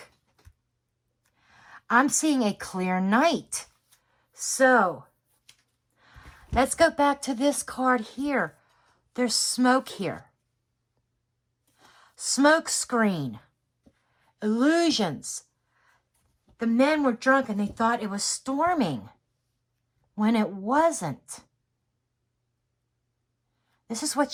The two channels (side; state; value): both; identical; correlation 1.00